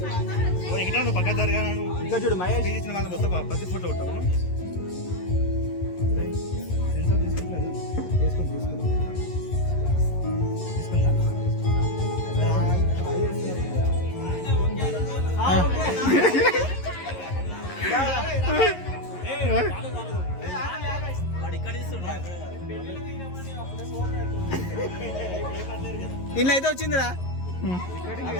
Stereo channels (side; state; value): right; late; 11 ms